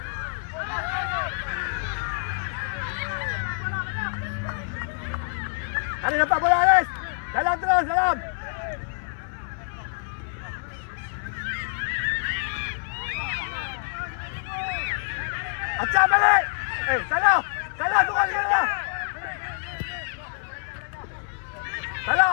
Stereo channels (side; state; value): right; silent; 59 dB below the other